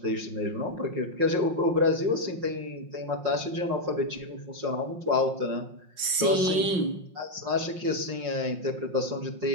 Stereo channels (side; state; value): left; late; 5.6 ms